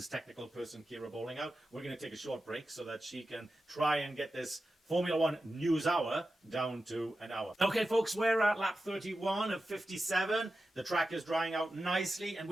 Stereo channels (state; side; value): normal; both; correlation 0.92